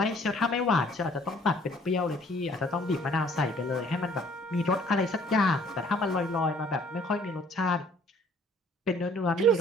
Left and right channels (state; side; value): normal; both; correlation 0.58